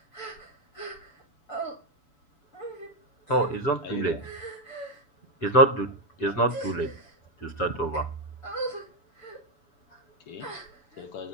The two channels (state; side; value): late; right; 6.9 ms